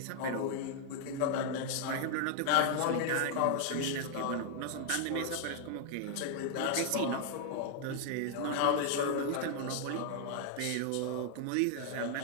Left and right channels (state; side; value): different; both; correlation -0.01